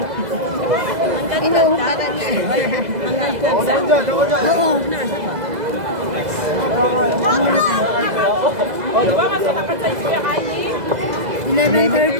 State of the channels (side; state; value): left; late; 2.0 ms